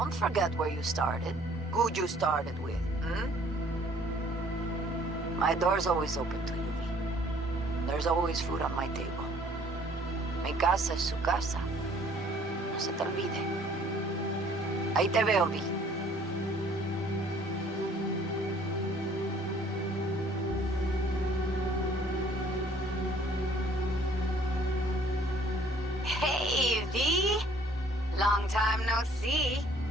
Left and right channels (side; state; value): both; normal; correlation 0.58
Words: forget where you started. Who you started with, My door's always open to you, V. There's always food on my table. Mi casa es su casa. No se te olvide. Ahí te veo, V. Hey, V. Long time no see.